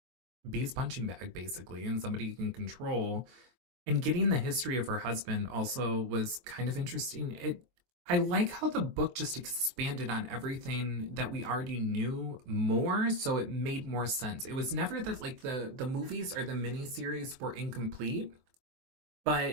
be his punching bag, basically, and somebody he can control. And getting the history of her husband also was kind of interesting. I like how the book just expanded on everything that we already knew more, so it made more sense. It was never that like the movies or the miniseries were incomplete,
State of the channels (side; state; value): left; late; 23 ms